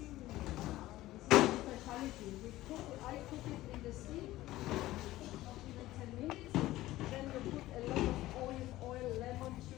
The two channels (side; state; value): right; quieter; 16.4 dB